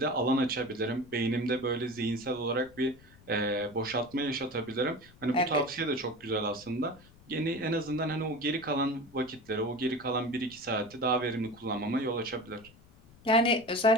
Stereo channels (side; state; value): left; noise; rumble, 24 dB below the sound